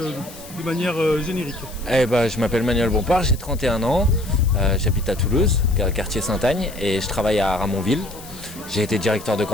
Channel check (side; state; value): left; noise; hiss, 17 dB below the sound